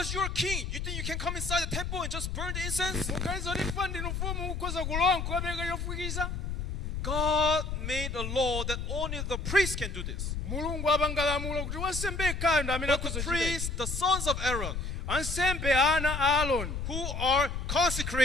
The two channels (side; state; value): left; noise; rumble, 4 dB below the sound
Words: you're a king. You think you can come inside the temple and just burn the incense? Mukaliza kuti fa ndinu mfumu mukhoza kulowa nkukapereka chofukiza. God made a law that only the priest can do this. Mulungu apanga lamulo kuti wansembe yekhayo ndi amene But the akhoza kuchita. priests, the sons of Aaron, Ansembe ana a Aaroni who are